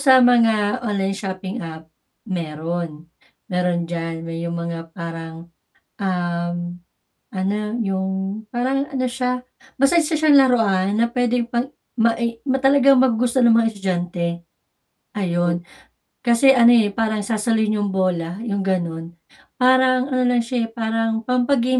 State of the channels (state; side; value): identical; both; correlation 1.00